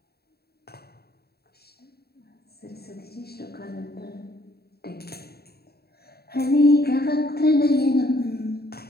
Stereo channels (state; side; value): late; right; 0.46 ms